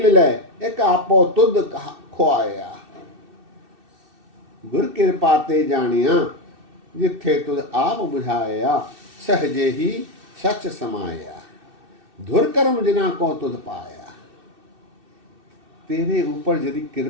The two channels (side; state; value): left; late; 2.6 ms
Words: ले एक आपो तुध खोआया। गुर कृपा ते जानिया जिथे तुध आप बुझाया। सहजे ही सच समाया। धुर कर्म जिना को तुध पाया। तेरे ऊपर यदि